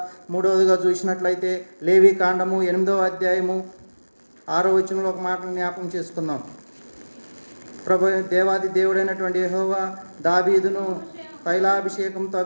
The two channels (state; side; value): inverted; both; correlation -1.00